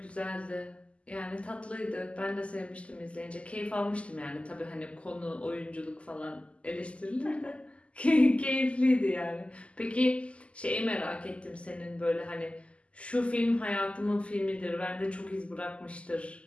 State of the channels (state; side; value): late; right; 0.058 ms